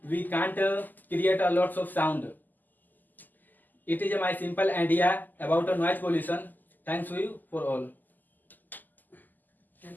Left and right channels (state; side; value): late; right; 0.086 ms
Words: we can't create a lots of sound. It is my simple idea about noise pollution. Thanks to you for all.